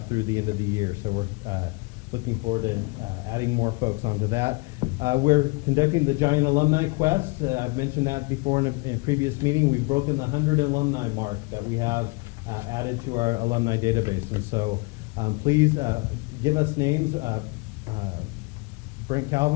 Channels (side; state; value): right; quieter; 28.6 dB